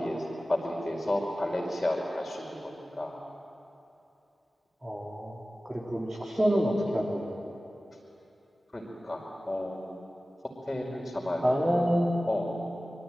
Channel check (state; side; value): normal; both; correlation 0.96